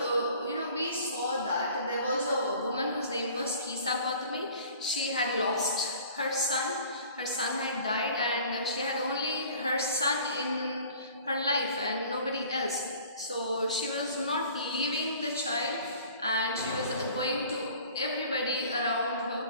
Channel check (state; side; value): inverted; both; correlation -0.48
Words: we saw that there was a woman whose name was Kisa Gautami. She had lost her son. Her son had died, and she had only her son in her life and nobody else. So she was not leaving the child, and she was going to everybody around